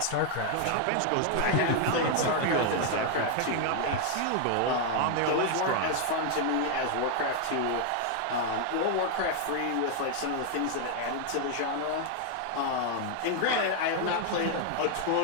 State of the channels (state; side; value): different; both; correlation 0.00